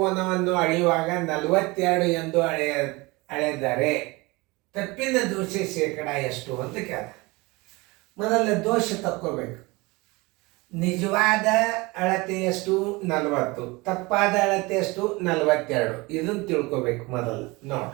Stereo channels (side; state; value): left; quieter; 24.0 dB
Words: ಅಳೆಯುವಾಗ 42 ಎಂದು ಅಳೆದರೆ ತಪ್ಪಿನ ದೋಷ ಶೇಕಡ ಎಷ್ಟು ಅಂತ ಕೇಳ್ತಾನೆ. ಮೊದಲ ದೋಷ ತಕ್ಕೋಬೇಕು. ನಿಜವಾದ ಅಳತೆ ಎಷ್ಟು? 40. ತಪ್ಪಾದ ಅಳತೆ ಎಷ್ಟು? 42. ಇದನ್ನು ತಿಳ್ಕೊಬೇಕು ಮೊದಲು.